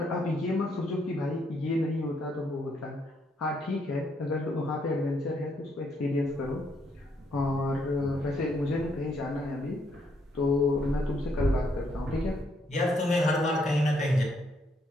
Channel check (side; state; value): both; normal; correlation 0.73